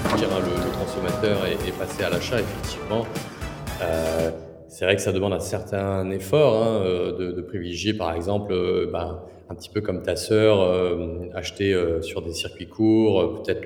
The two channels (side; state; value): both; identical; correlation 1.00